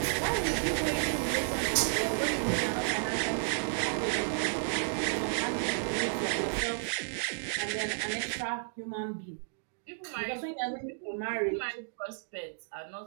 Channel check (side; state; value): left; silent; digital silence